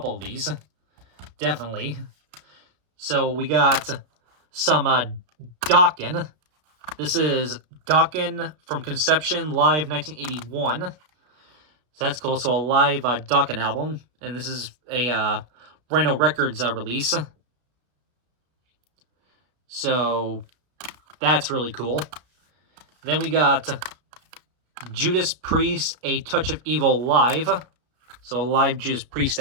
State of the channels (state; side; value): late; left; 33 ms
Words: of these, definitely. So we got some Dokken. This is Dokken from Conception, live 1981. So that's cool. So a live Dokken album, and this is a Rhino Records release. So that's really cool. Then we got Judas Priest, A Touch of Evil live. So a live Judas Priest